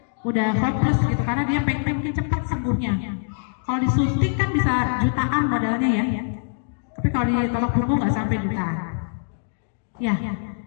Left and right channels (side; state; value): right; silent; digital silence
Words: udah hopeless gitu karena dia pengen cepat sembuhnya. Kalau disuntik kan bisa jutaan modalnya ya. Tapi kalau di ketok punggung nggak sampai jutaan. Ya.